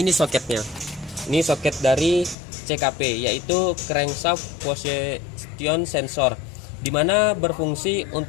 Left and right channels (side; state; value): right; drops out; at 2.4 s